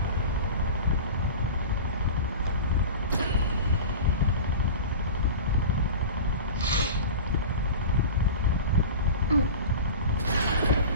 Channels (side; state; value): both; inverted; correlation -0.32